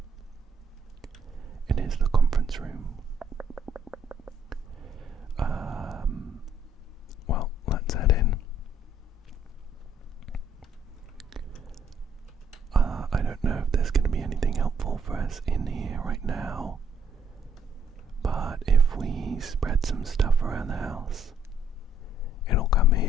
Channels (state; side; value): normal; both; correlation 0.66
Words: It is the conference room. Well, let's head in. I don't know if there's going to be anything helpful for us in here right now, but if we spread some stuff around the house, it'll come